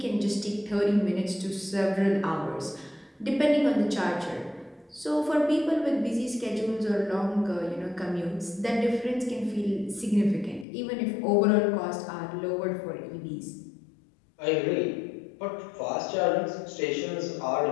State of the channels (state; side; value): drops out; right; at 10.7 s